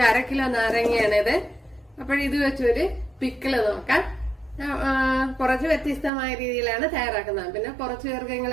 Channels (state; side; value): drops out; left; at 6.1 s